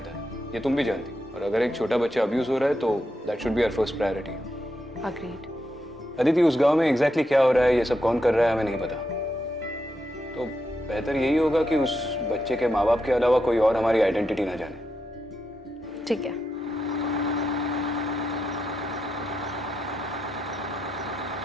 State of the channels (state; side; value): normal; both; correlation 0.84